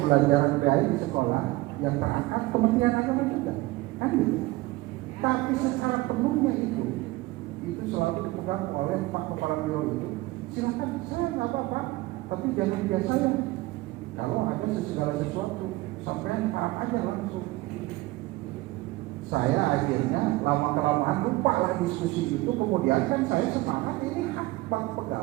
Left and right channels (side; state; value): left; quieter; 19.7 dB